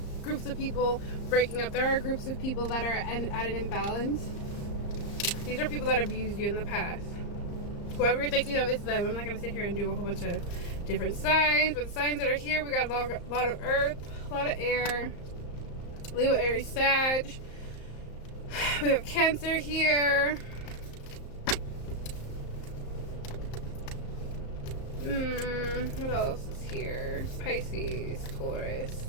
groups of people breaking up. There are groups of people that are at an imbalance. These are people that abused you in the past. Whoever you're thinking of, it's them. I'm not going to sit here and do a whole bunch of different signs, but the signs that are here, we got a lot of earth, a lot of air, Leo, Aries, Sag. We have Cancer here. What else is here? Pisces, Taurus,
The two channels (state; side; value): late; right; 35 ms